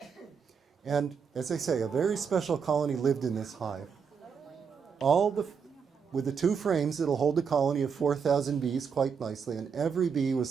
And as I say, a very special colony lived in this hive. With the two frames, it'll hold a colony of 4,000 bees quite nicely, and every bee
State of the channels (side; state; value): left; quieter; 6.4 dB